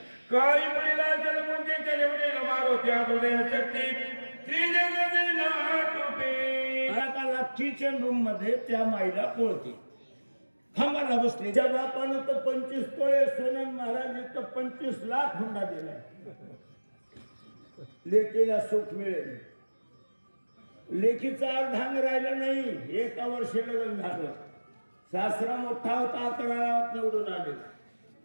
काही मुलीला जलमुंजे केले मारो त्या हृदय शक्ती श्री जगदे नाटुटे. आता किचन रूम मध्ये त्या माईला पोळते खांबाला बसले. त्या बापानं तर 25 तोळे सोनं, महाराज तर 25 लाख हुंडा दिलाय. लेकीला सुख मिळेल. लेकीचा अर्धांग राहिलं नाही. एका वर्षी लग्न झालं. सासरा मोठा होता, 11 गावात निवडून आले.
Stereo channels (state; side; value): inverted; both; correlation -1.00